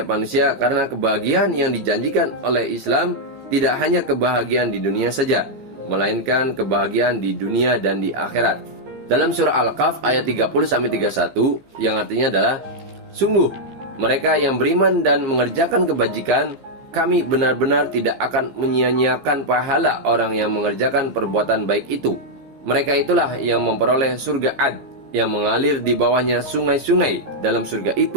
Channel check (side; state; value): left; late; 15 ms